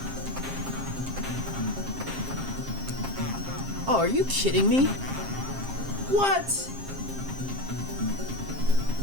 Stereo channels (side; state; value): left; late; 7.5 ms